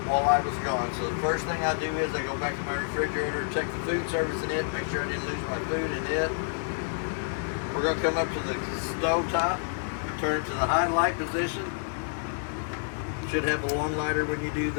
while I was gone. So the first thing I do is I go back to my refrigerator, check the food service in it, make sure I didn't lose my food in it. We're going to come up to the stove top, turn it to the high light position. Should have a long lighter when you do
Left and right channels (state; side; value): silent; right; digital silence